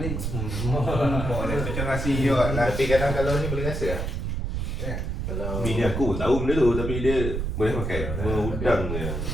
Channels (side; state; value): right; noise; rumble, 2 dB below the sound